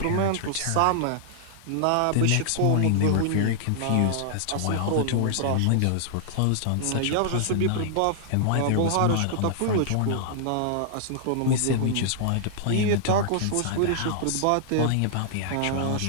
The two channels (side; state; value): both; different; correlation -0.01